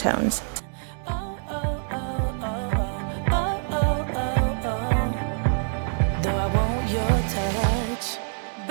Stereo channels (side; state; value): left; silent; 61 dB below the other